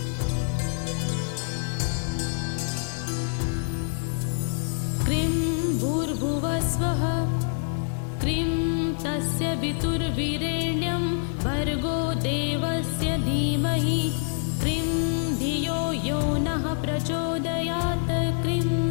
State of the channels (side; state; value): right; silent; 61 dB below the other